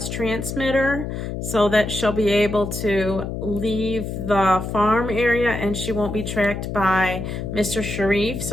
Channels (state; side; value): noise; left; hum, 5 dB below the sound